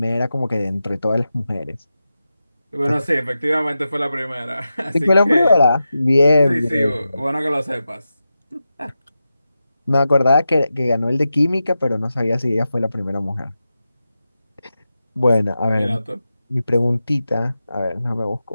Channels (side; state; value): both; inverted; correlation -0.91